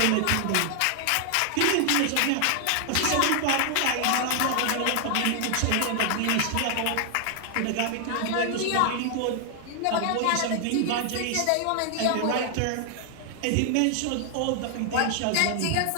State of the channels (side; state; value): both; different; correlation 0.00